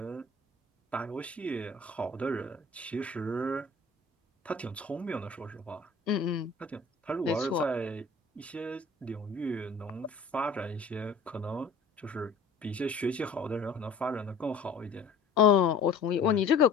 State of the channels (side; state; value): right; quieter; 4.0 dB